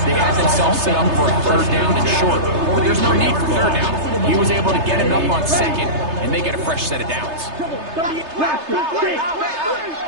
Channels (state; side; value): late; left; 3.3 ms